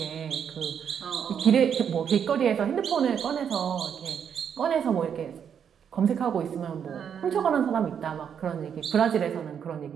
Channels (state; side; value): quieter; left; 8.0 dB